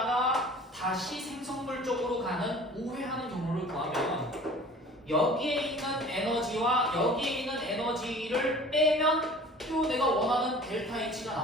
다시 생성물 쪽으로 가는 우회하는 경로를 구하면 여기에 있는 에너지와 여기에 있는 에너지를 빼면 또 내가 원하는 델타 H가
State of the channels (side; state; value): both; normal; correlation 0.45